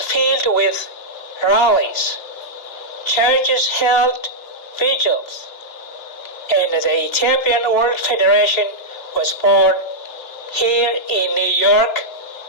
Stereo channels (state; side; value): late; right; 2.9 ms